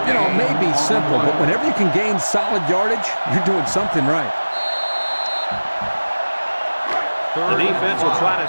You know, it may be simple, but whenever you can gain solid yardage, you're doing something right. The defense will try to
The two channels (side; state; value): both; inverted; correlation -1.00